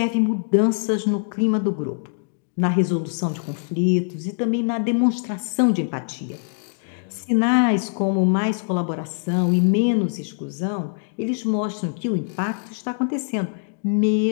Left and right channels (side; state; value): right; silent; digital silence